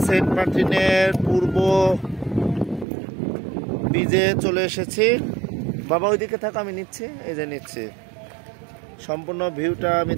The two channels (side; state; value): left; drops out; at 2.9 s